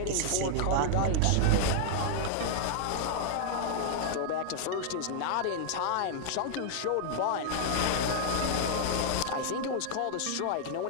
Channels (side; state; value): both; different; correlation -0.01